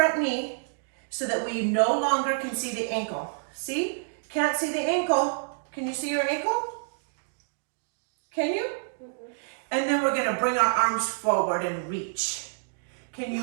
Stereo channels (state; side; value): silent; left; digital silence